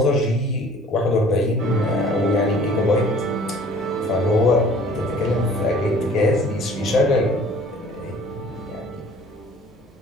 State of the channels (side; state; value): both; normal; correlation 0.51